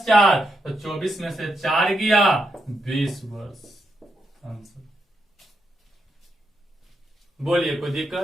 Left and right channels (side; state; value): both; normal; correlation 0.82